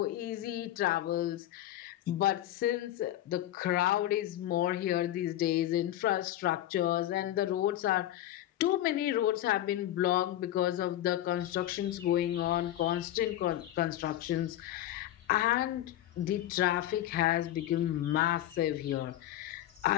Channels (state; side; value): quieter; right; 13.3 dB